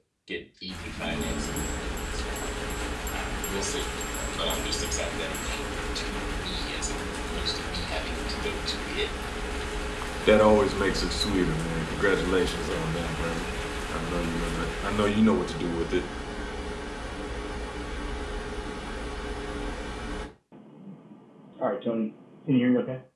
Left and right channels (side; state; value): both; identical; correlation 1.00